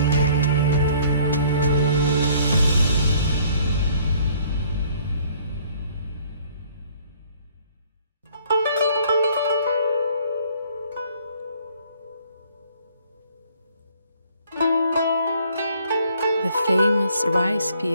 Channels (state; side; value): inverted; both; correlation -0.59